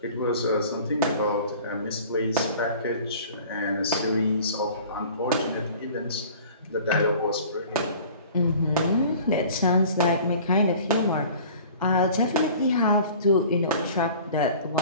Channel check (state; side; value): inverted; both; correlation -0.45